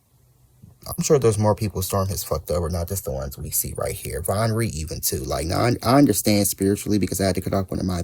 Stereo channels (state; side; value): identical; both; correlation 1.00